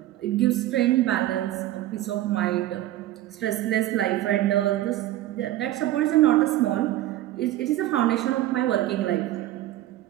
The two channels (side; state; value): left; quieter; 14.6 dB